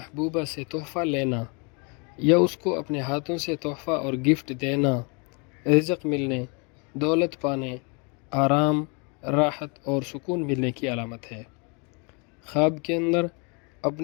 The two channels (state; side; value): quieter; right; 33.5 dB